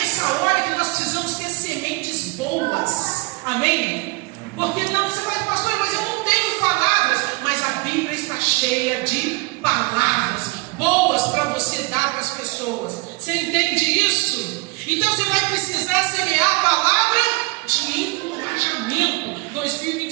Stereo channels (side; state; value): left; quieter; 27.4 dB